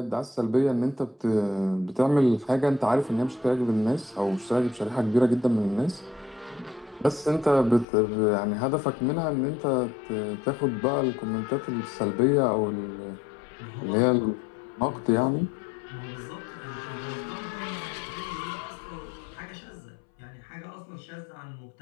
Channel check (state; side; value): drops out; right; at 7.9 s